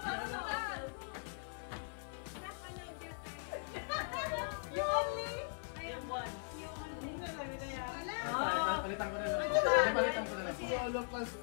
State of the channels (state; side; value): silent; right; 51 dB below the other